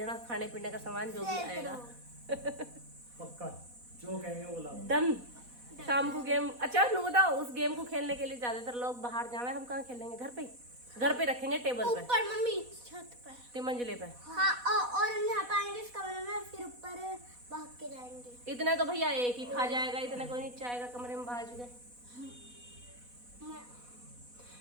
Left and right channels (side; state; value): left; late; 4.1 ms